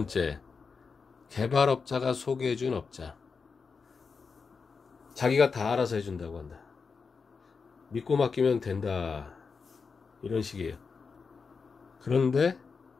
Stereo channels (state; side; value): quieter; right; 5.1 dB